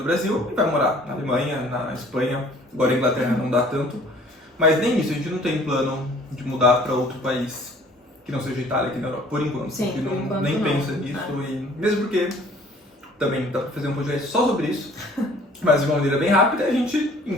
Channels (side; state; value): both; normal; correlation 0.54